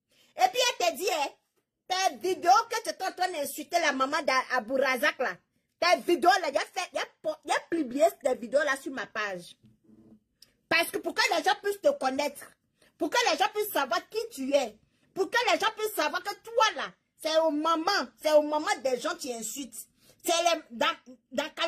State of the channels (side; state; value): both; identical; correlation 1.00